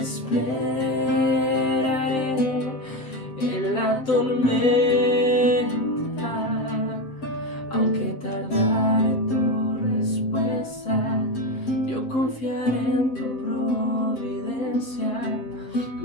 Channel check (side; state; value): right; late; 7.9 ms